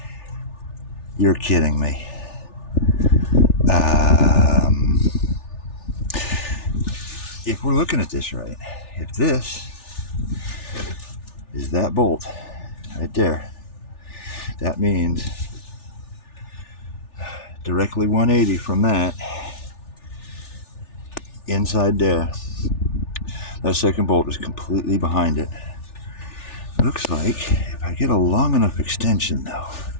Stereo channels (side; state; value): right; late; 3.4 ms